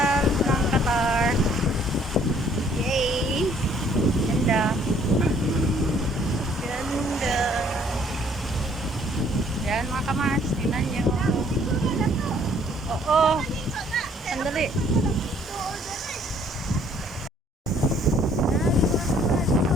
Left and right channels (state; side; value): normal; both; correlation 0.61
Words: ng Qatar. Yay! Ganda. Ganda. Yan mga kamars, tingnan nyo. Oo. Sandali.